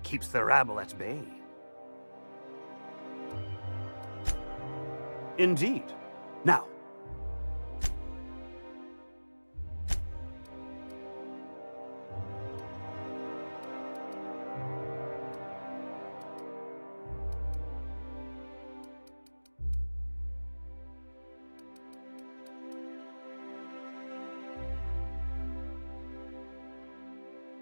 keeps the rabble at bay. Indeed. Now,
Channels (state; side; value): inverted; both; correlation -1.00